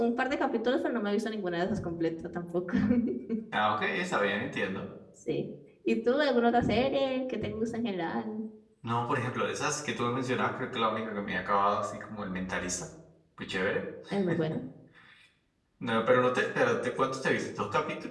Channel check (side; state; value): both; identical; correlation 1.00